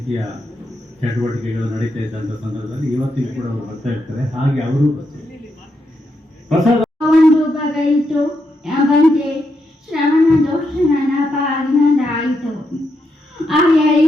ಚಟುವಟಿಕೆಗಳು ನಡೀತಾ ಇದ್ದಂಥ ಸಂದರ್ಭದಲ್ಲಿ ಇವತ್ತಿಗೂ ಕೂಡ ಅವರು ಬರ್ತಾ ಇರ್ತಾರೆ. ಹಾಗೆ ಅವರು ಪ್ರಸಾದ ಒಂದು ಬಗೆಯಿತು ಬಂತೆ ಶ್ರವಣ ದೋಷ ನನ್ನ ಪಾಲಿನದಾಯಿತು. ಆ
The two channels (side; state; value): both; normal; correlation 0.82